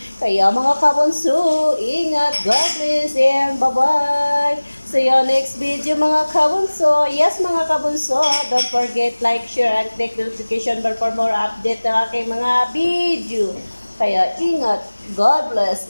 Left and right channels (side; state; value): both; inverted; correlation -1.00